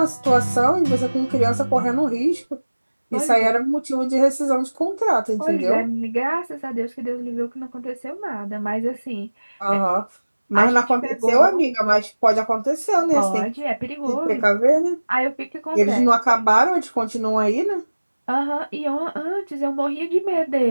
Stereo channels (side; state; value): both; inverted; correlation -1.00